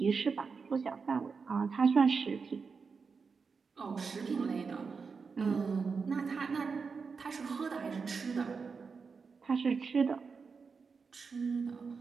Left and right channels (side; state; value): left; quieter; 5.2 dB